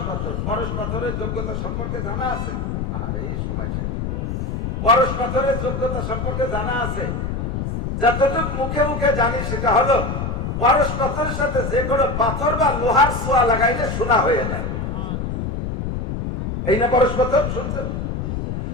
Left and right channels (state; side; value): noise; left; rumble, 3 dB below the sound